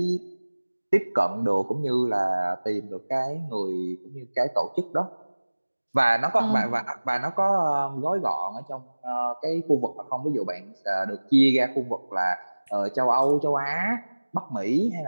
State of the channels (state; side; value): inverted; both; correlation -1.00